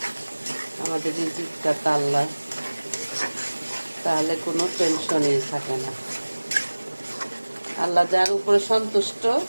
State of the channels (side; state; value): both; inverted; correlation -1.00